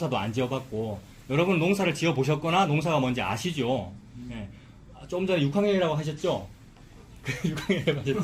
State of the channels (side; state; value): both; identical; correlation 1.00